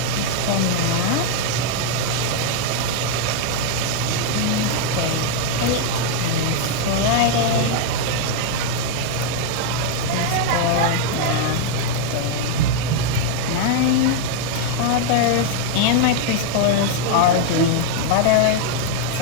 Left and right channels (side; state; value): both; different; correlation 0.00